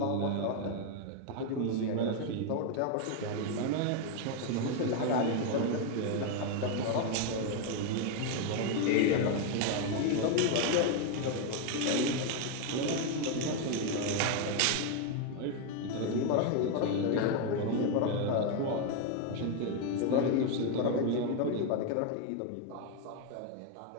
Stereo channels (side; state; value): both; different; correlation 0.01